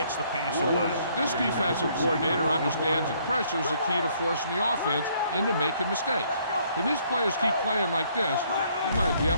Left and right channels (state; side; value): inverted; both; correlation -0.65